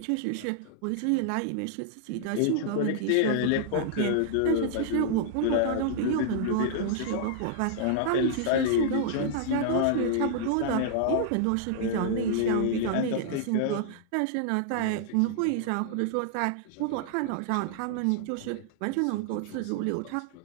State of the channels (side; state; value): both; different; correlation -0.01